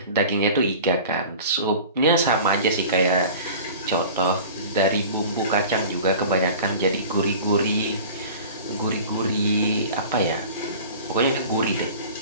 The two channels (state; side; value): inverted; both; correlation -0.40